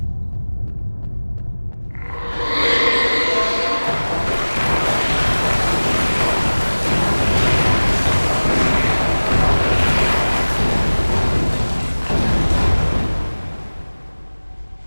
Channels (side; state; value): both; inverted; correlation -1.00